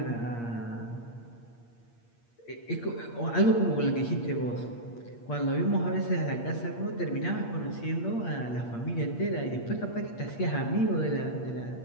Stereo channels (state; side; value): late; right; 8.6 ms